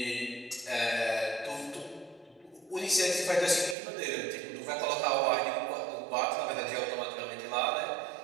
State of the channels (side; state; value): left; drops out; at 3.8 s